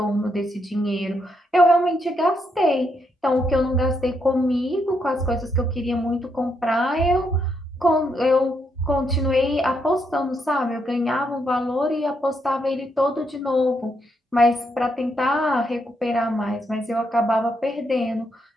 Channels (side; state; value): both; normal; correlation 0.78